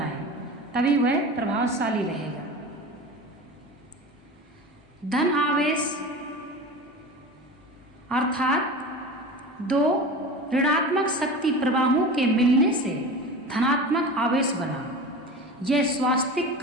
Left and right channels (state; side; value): normal; both; correlation 0.32